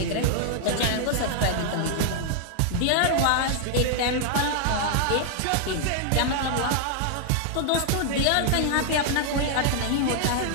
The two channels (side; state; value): both; different; correlation 0.00